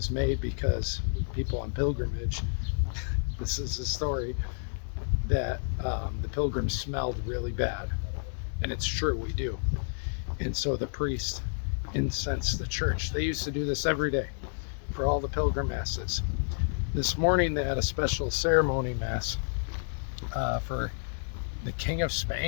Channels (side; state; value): right; silent; digital silence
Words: made because people on pilgrimage, this is a story, that the pilgrims smelled really bad. And it's true, we do. And so the priest incensed the church. They used to do this every day for all the pilgrim masses. This morning they had a special ceremony mass for the King of